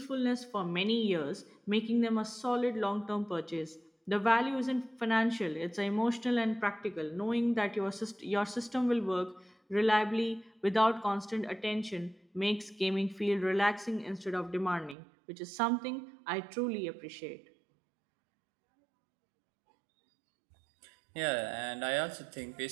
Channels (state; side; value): drops out; left; at 15.0 s